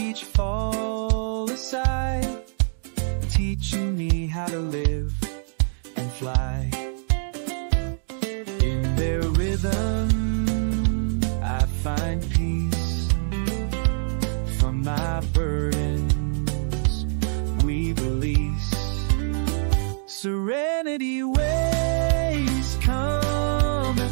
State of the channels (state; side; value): silent; left; digital silence